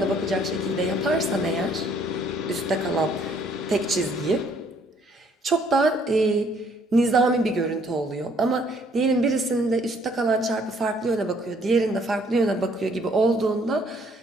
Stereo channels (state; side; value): normal; both; correlation 0.64